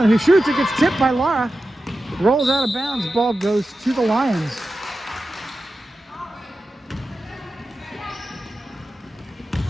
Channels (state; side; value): normal; both; correlation 0.92